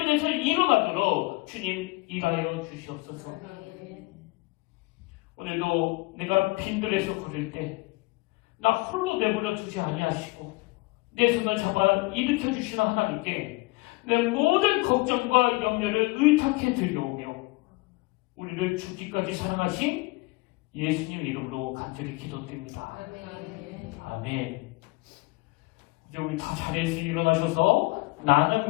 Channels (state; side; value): quieter; right; 24.0 dB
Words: 일어나도록 주님 일하여 주시옵소서. 오늘도 내가 빈들에서 걸을 때 나 홀로 내버려 두지 아니하시고 내 손을 잡아 일으켜 주시는 하나님께 내 모든 걱정과 염려를 의탁해 드려오며 우리를 죽기까지 사랑하신 예수님 이름으로 간절히 기도드립니다. 아멘. 이제 우리 다 자리에서 일어나셔서 나는